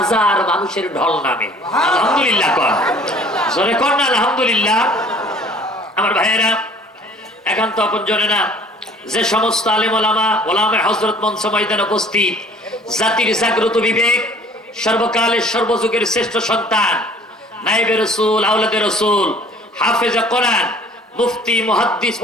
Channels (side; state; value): both; normal; correlation 0.52